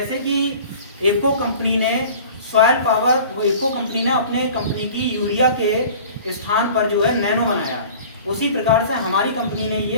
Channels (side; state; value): both; inverted; correlation -0.44